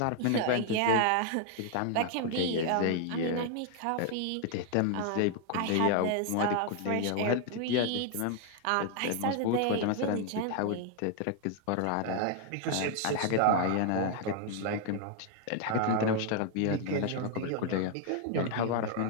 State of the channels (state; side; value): different; both; correlation 0.00